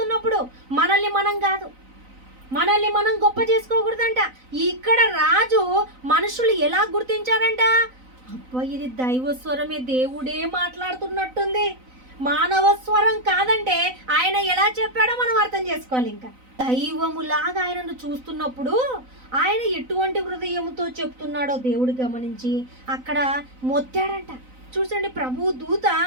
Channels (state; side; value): late; left; 3.9 ms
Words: మనల్ని మనం కాదు, మనల్ని మనం గొప్ప చేసుకోకూడదంట. ఇక్కడ రాజు మనుషులు ఎలా గుర్తించారంట, అబ్బా ఇది దైవ స్వరమే, దేవుడే మాట్లాడుతున్నట్టుంది, మానవ స్వరం కాదంటే ఆయన ఎలా చెప్పాడో మనం అర్థం చేసుకోవాలి. ఇంకా దైవములాగా ఆయనను చూస్తున్నప్పుడు ఆయన ఎటువంటి హృదయముతో చెప్తున్నాడో దేవుడు గమనించి అక్కడ మొత్తాడంట. చూసండి, ప్రభు దూత